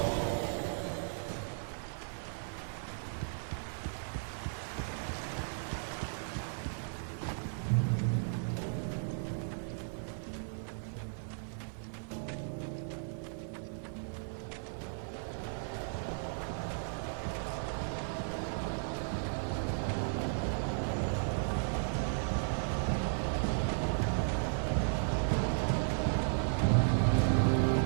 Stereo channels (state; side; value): silent; left; 54 dB below the other